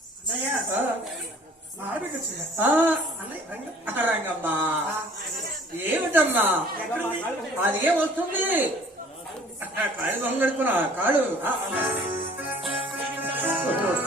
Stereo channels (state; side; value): normal; both; correlation 0.52